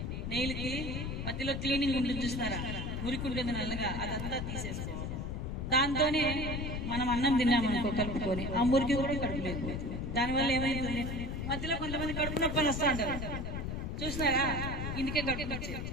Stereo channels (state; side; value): noise; left; rumble, 3 dB below the sound